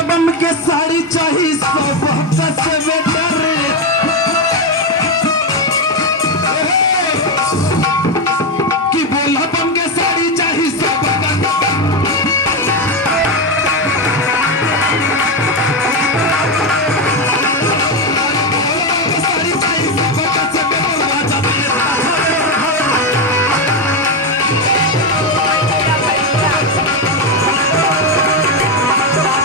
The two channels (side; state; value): both; normal; correlation 0.09